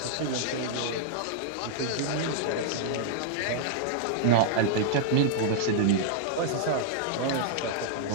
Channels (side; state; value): both; different; correlation -0.01